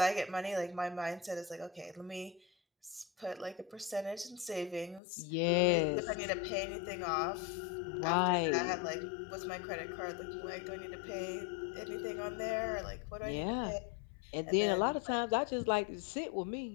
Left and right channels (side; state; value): right; drops out; at 5.0 s